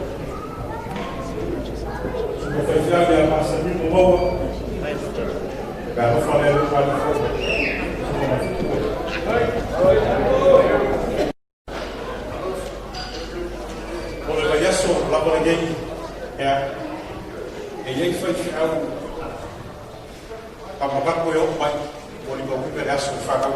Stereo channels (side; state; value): both; identical; correlation 1.00